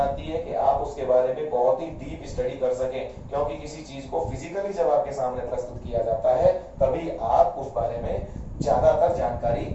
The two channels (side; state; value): both; identical; correlation 1.00